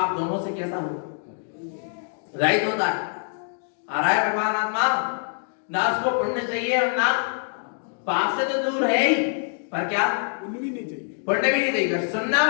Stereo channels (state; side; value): silent; right; digital silence